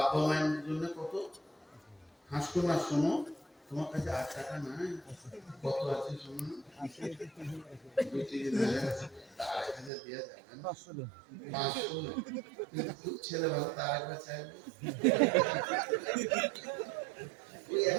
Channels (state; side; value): drops out; left; at 9.9 s